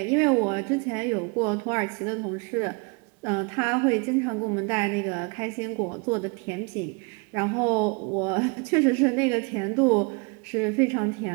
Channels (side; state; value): left; quieter; 31.7 dB